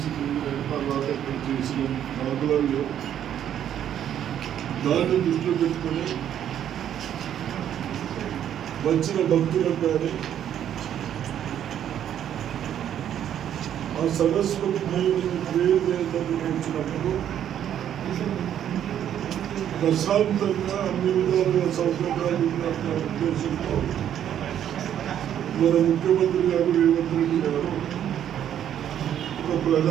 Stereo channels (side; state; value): left; quieter; 10.2 dB